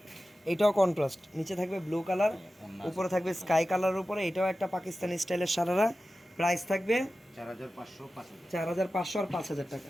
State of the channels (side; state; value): both; normal; correlation 0.94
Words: এটাও কন্ট্রাস্ট, নিচে থাকবে ব্লু কালার, ওন্না উপরে থাকবে স্কাই কালারের উপরে। এটাও একটা পাকিস্তানি স্টাইলের সারারা। প্রাইস থাকবে 4500 5000। 4500 আর 5000 টাকা।